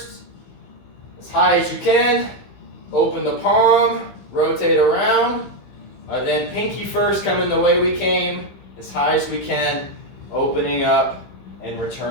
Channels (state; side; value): late; right; 15 ms